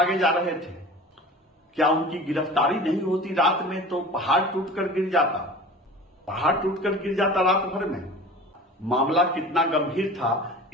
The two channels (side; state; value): both; normal; correlation 0.39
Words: जा रहे थे? क्या उनकी गिरफ्तारी नहीं होती रात में तो पहाड़ टूटकर गिर जाता, रात भर में। मामला कितना गंभीर था